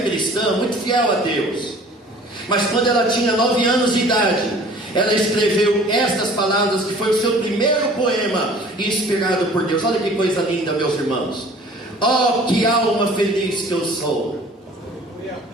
muito fiel a Deus. Mas quando ela tinha 9 anos de idade, ela escreveu estas palavras, que foi o seu primeiro poema inspirado por Deus. Olha que coisa linda, meus irmãos. Oh, que alma feliz que eu sou.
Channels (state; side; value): normal; both; correlation 0.49